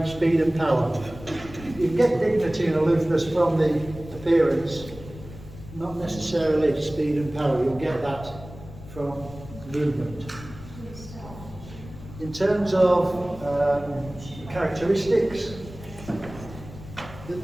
speed and power. You can get dignity and aloofness from the appearance, not necessarily speed and power. You'll get that from movement. In terms of characteristics, the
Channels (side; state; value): left; noise; rumble, 15 dB below the sound